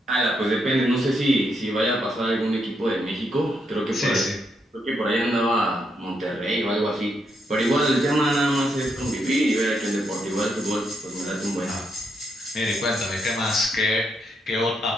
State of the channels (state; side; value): normal; both; correlation 0.79